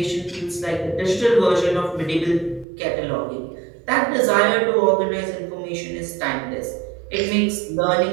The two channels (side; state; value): left; drops out; at 2.7 s